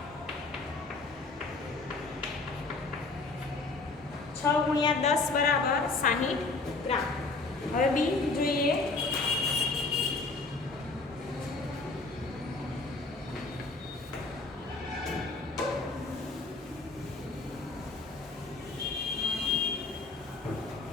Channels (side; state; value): right; quieter; 3.7 dB